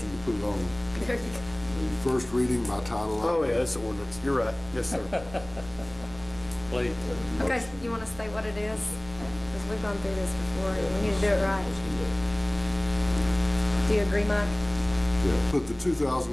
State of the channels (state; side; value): noise; right; rumble, 19 dB below the sound